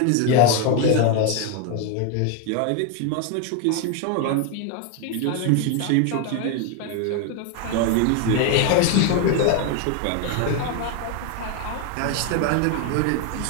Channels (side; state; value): both; different; correlation 0.01